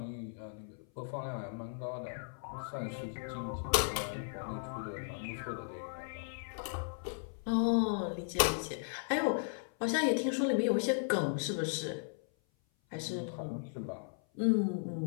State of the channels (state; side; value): silent; right; 54 dB below the other